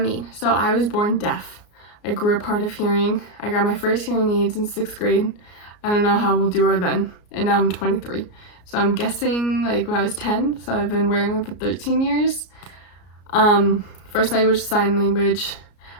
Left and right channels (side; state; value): right; late; 34 ms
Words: mean? So I was born deaf. I grew up hard of hearing. I got my first hearing aids in 6th grade. I don't know how we'll do her then, and now I'm 23. So I'm guessing like when I was 10, so I've been wearing them for 13 years. First language, sign language.